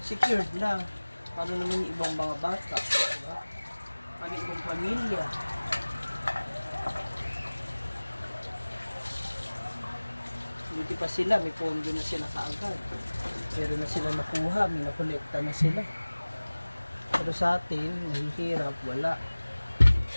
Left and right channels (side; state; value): both; inverted; correlation -1.00